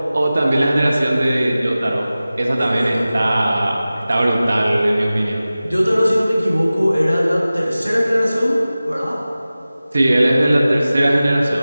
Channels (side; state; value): both; inverted; correlation -0.96